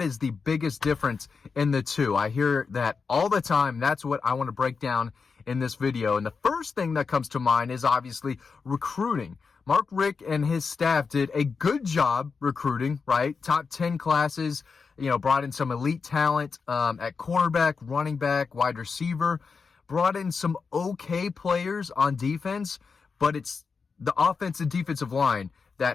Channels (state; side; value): quieter; right; 5.1 dB